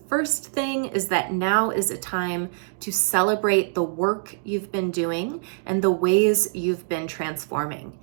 first thing is that now is a time to celebrate the work you've been doing and the ways you've been transforming.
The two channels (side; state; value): left; silent; digital silence